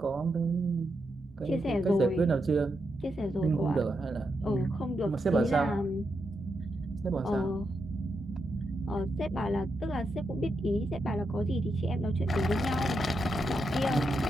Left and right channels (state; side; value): normal; both; correlation 0.84